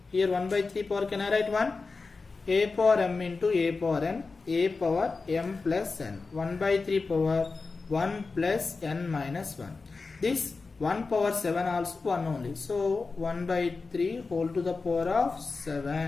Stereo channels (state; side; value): quieter; right; 4.2 dB